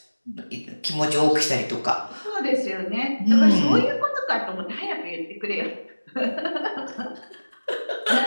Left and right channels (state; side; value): inverted; both; correlation -1.00